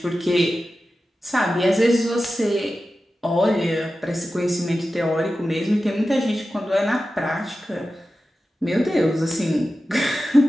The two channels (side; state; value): both; normal; correlation 0.93